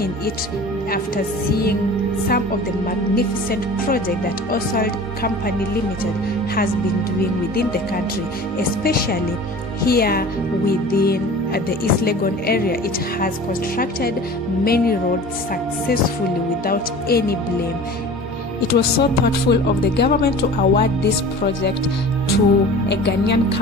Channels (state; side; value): normal; both; correlation 0.40